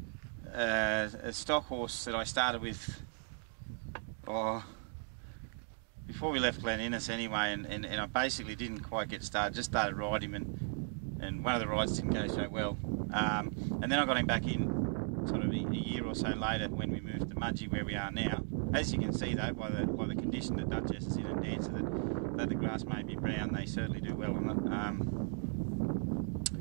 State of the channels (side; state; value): left; silent; 53 dB below the other